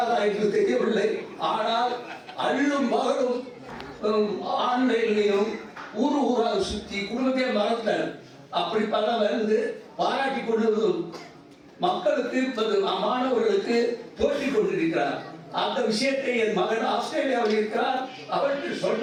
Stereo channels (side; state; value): both; identical; correlation 1.00